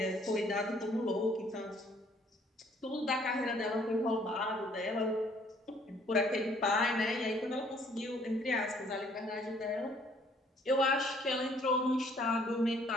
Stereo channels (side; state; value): both; normal; correlation 0.61